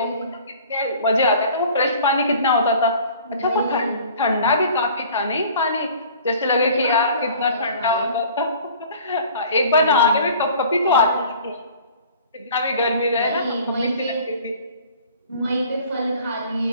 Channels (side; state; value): both; inverted; correlation -0.48